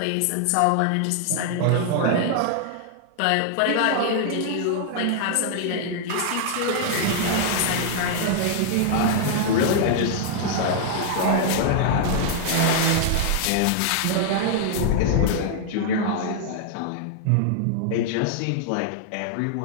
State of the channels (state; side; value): different; both; correlation -0.01